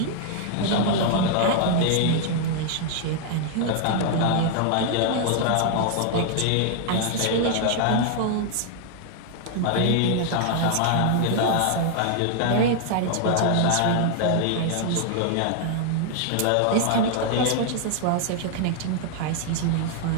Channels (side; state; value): both; different; correlation 0.00